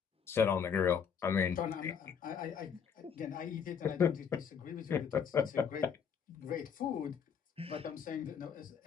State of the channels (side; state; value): right; quieter; 7.2 dB